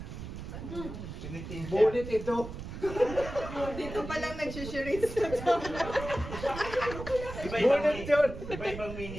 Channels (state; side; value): noise; right; rumble, 9 dB below the sound